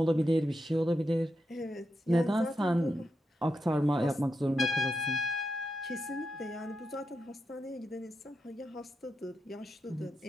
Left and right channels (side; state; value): both; normal; correlation 0.87